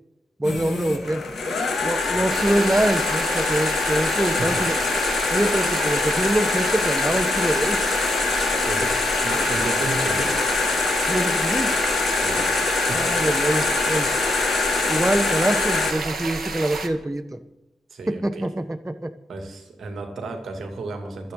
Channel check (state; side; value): normal; both; correlation 0.80